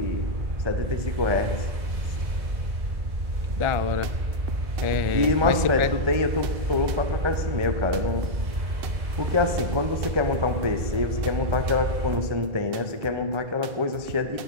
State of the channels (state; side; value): late; left; 1.3 ms